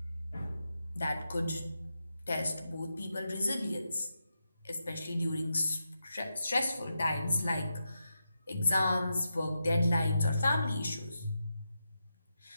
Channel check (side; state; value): both; inverted; correlation -0.87